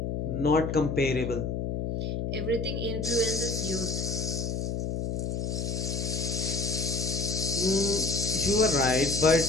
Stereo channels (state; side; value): noise; left; hum, 2 dB below the sound